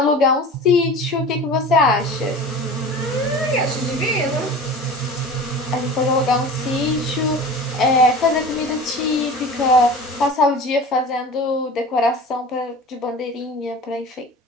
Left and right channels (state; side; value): normal; both; correlation 0.37